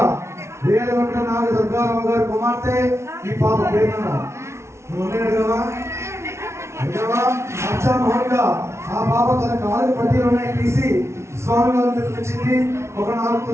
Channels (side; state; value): left; late; 0.13 ms